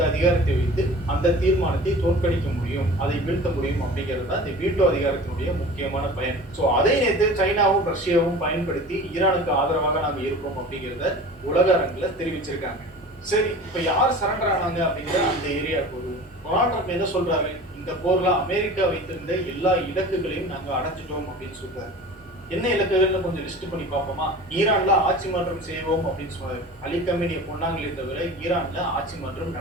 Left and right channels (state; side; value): normal; both; correlation 0.39